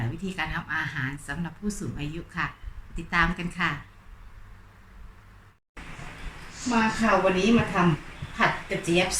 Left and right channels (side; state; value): both; identical; correlation 1.00